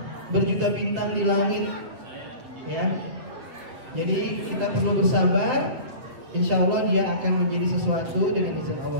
berjuta bintang di langit, ya. Jadi kita perlu bersabar. Insya Allah dia akan menjadi sesuatu dengan izin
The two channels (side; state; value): left; late; 7.8 ms